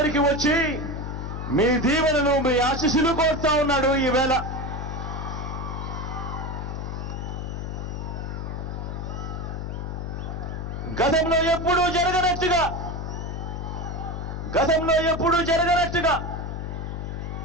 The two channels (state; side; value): noise; left; hum, 5 dB below the sound